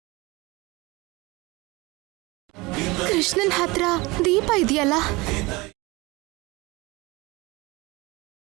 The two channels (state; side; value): quieter; left; 23.3 dB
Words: ಕೃಷ್ಣನ್ ಹತ್ರ ದೀಪ ಇದೆಯಲ್ಲ,